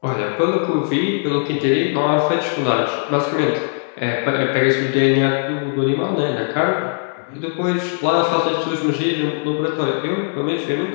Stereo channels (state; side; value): silent; right; digital silence